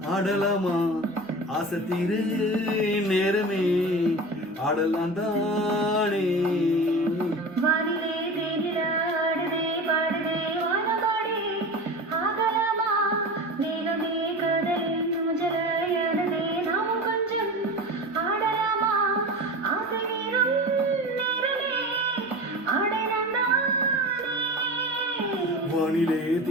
ஆடலாமா ஆசத்தீரு நேரமே ஆடலாம் தானே. வானிலே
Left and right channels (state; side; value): normal; both; correlation 0.31